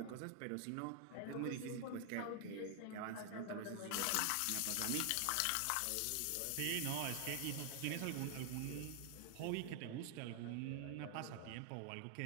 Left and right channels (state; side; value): different; both; correlation 0.00